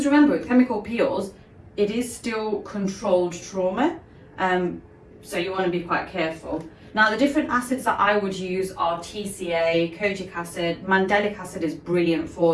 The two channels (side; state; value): both; identical; correlation 1.00